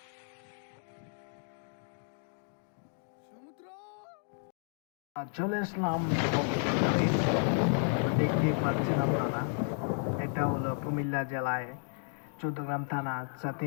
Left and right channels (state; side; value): silent; right; 56 dB below the other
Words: চলে আসলাম কক্সবাজারে। দেখতে পাচ্ছেন আপনারা, এটা হলো কুমিল্লা জেলায় চৌদ্দগ্রাম থানা